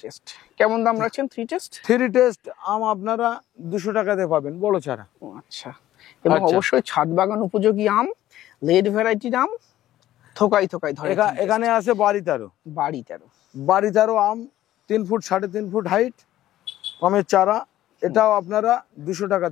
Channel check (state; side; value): quieter; right; 13.8 dB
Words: টেস্ট কেমন দাম রাখছেন 3 টেস্ট? 3 টেস্ট আম আপনারা 200 টাকাতে পাবেন, বড় চারা। আচ্ছা। এবং আচ্ছা। অবশ্যই ছাদ বাগান উপযোগী আম, লেড ভ্যারাইটির আম, থোকাই থোকাই ধরে। এখানে আছে বাড়িতারও। বাড়িতেও আম 3 ফুট 3.5 ফুট হাইট, আমের চারা, এটাও আপনারা 200